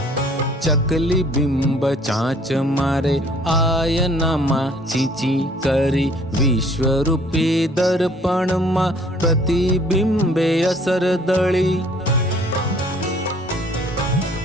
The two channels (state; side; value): normal; both; correlation 0.57